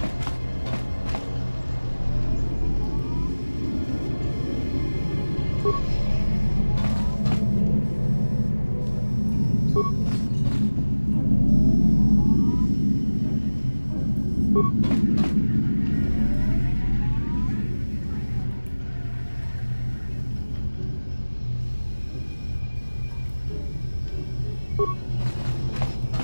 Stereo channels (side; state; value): both; inverted; correlation -1.00